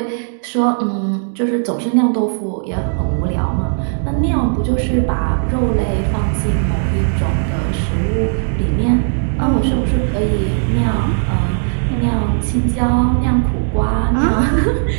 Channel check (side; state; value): left; silent; digital silence